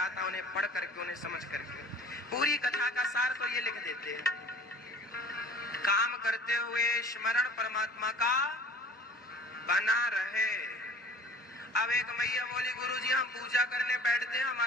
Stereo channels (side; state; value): both; normal; correlation 0.45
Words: उन्हें पढ़ करके, उन्हें समझ करके। पूरी कथा का सार तो ये लिख देते हैं, काम करते हुए स्मरण परमात्मा का बना रहे। अब एक मैया बोली, गुरुजी हम पूजा करने बैठते हैं,